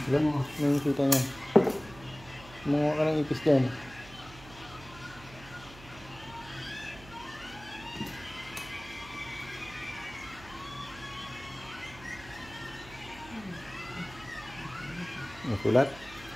Ilan? Ano yung kita niya? Mga ka ng ipis dyan. May sulat?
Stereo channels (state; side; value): noise; right; hum, 18 dB below the sound